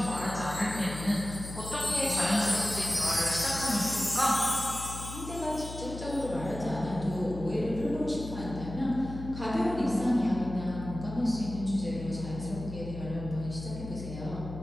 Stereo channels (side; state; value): left; noise; hum, 10 dB below the sound